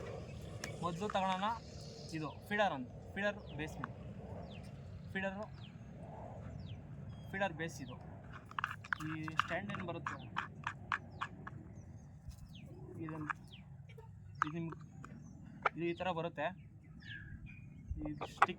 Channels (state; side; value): identical; both; correlation 1.00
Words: ಮೊದಲು ತಗೊಳ್ಳೋಣ ಇದು ಫೀಡರ್ ಅಂತ, ಫೀಡರ್ ಬೇಸ್ ಇದು. ಈ ಸ್ಟ್ಯಾಂಡ್ ಏನು ಬರುತ್ತೆ ಇದು ಈ ಥರ ಬರುತ್ತೆ. ಈ